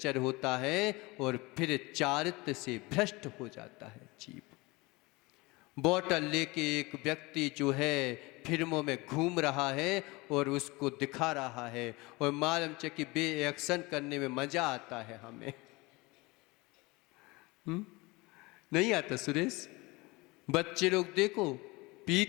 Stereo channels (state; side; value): quieter; right; 23.7 dB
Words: होता है और फिर चारित्र से भ्रष्ट हो जाता है जीव। बोतल लेके एक व्यक्ति जो है फिल्मों में घूम रहा है और उसको दिखा रहा है, और मालूम च कि बे एक्शन करने में मजा आता है हमें। नहीं आता सुरेश? बच्चे लोग देखो